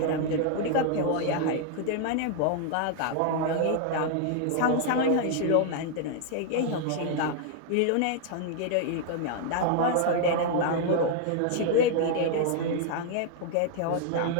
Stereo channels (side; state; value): both; different; correlation 0.00